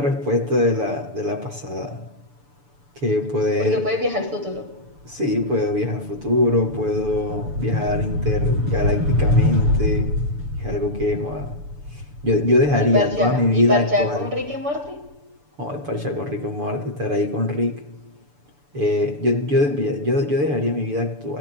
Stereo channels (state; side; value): late; left; 6.9 ms